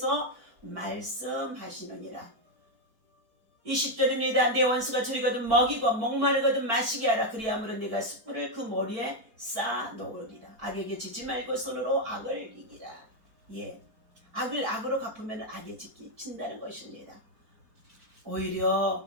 말씀하시느니라. 20절입니다. 내 원수가 줄이거든 먹이고 목마르거든 마시게 하라. 그리함으로 네가 숯불을 그 머리에 쌓아 놓으리라. 악에게 지지 말고 손으로 악을 이기라. 악을 악으로 갚으면 악에 진다는 것입니다.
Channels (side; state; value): left; late; 4.5 ms